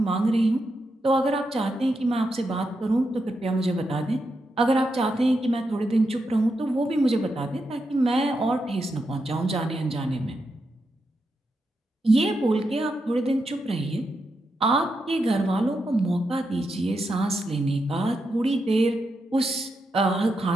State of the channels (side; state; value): both; normal; correlation 0.85